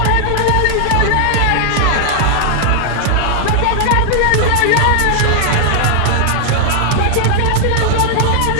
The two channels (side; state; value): both; different; correlation 0.00